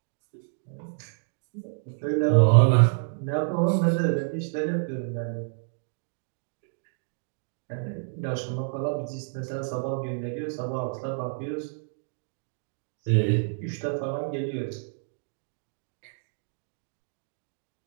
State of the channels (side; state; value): left; silent; digital silence